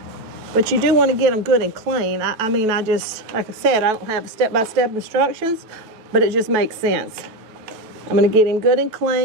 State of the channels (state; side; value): late; left; 9.2 ms